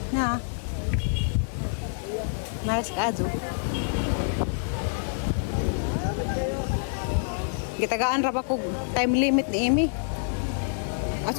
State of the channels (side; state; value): right; silent; digital silence